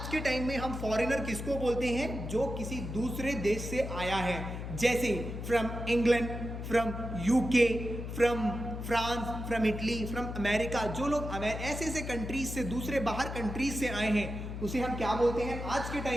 के टाइम में हम फॉरेनर किसको बोलते हैं? जो किसी दूसरे देश से आया है, जैसे from England, from UK, from France, from Italy, from America. जो लोग ऐसे ऐसे कंट्रीज से, दूसरे बाहर कंट्रीज से आए हैं, उसे हम क्या बोलते हैं आज के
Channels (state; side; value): noise; left; hum, 6 dB below the sound